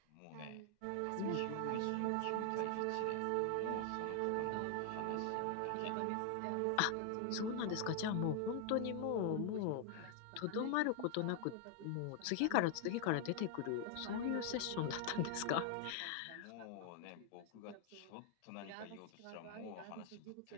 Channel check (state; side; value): different; both; correlation 0.00